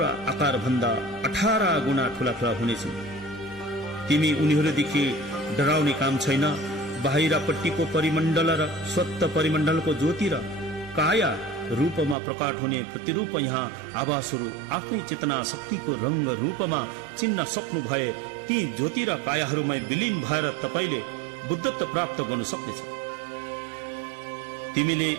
आकार भन्दा 18 गुणा ठूला हुनेछन्। तिमी उनीहरूदेखि डराउने काम छैन। बाहिरपट्टिको परिमण्डल र स्वत परिमण्डलको ज्योति र काया रूपमा प्रकट हुने प्रतिरूप यहाँ आवासहरू आफ्नै चेतना शक्तिको रंग रूपमा चिन्न सक्नु भए ती ज्योति र कायाहरूमा विलीन भएर तपाईले बुद्धत्व प्राप्त गर्न सक्नेछ। तिमीले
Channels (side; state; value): left; drops out; at 12.2 s